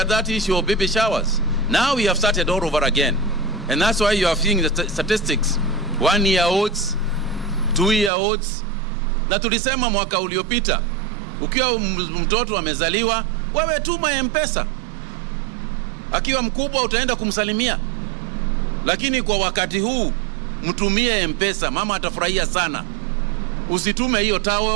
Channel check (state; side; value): drops out; left; at 8.1 s